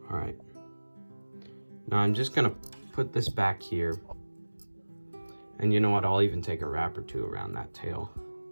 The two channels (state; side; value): inverted; both; correlation -1.00